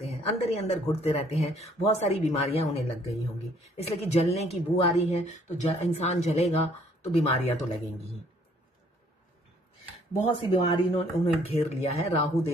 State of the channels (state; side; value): normal; both; correlation 0.62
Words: हैं, अंदर ही अंदर घुटते रहते हैं। बहुत सारी बीमारियां उन्हें लग गई होंगी, इसलिए कि जलने की बू आ रही है तो इंसान जलेगा तो बीमारियां तो लगेंगी ही। बहुत सी बीमारी उन्हें घेर लिया है।